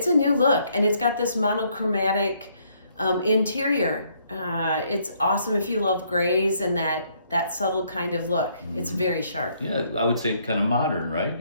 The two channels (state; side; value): inverted; both; correlation -0.69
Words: a new look, and it's got this monochromatic interior. It's awesome if you love grays and that subtle kind of look. It's very sharp. Yeah, I would say kind of modern, right?